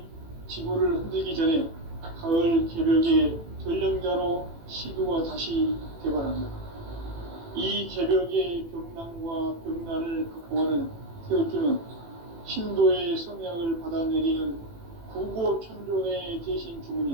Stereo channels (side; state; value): left; late; 18 ms